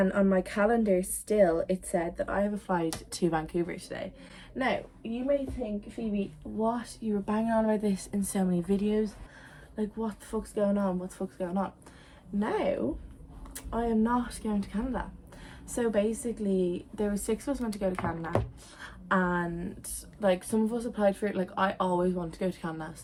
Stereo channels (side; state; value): both; identical; correlation 1.00